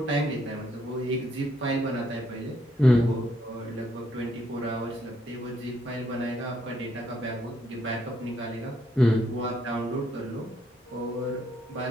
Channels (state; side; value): normal; both; correlation 0.73